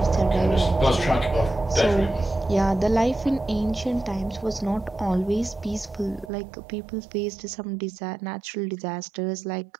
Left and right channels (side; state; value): left; drops out; at 6.3 s